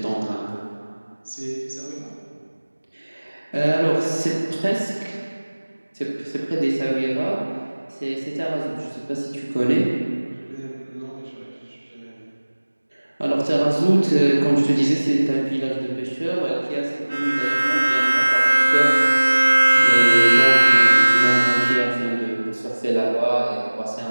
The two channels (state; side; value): inverted; both; correlation -1.00